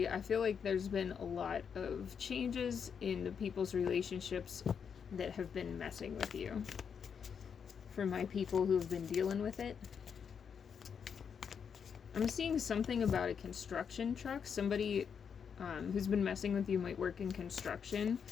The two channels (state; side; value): quieter; right; 6.9 dB